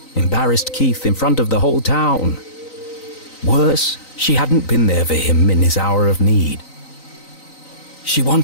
embarrassed Keith in front of the whole town. Worse, she hadn't been there for him in his hour of need. She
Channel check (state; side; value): late; right; 3.9 ms